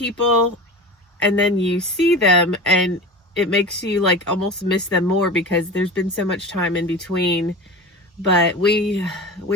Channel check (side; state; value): both; normal; correlation 0.31